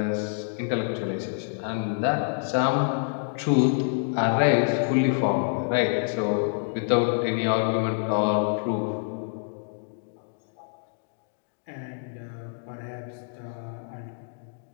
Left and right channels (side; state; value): right; silent; digital silence